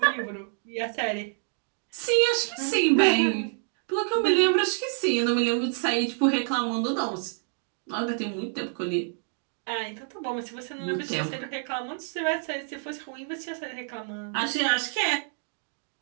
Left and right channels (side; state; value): left; silent; digital silence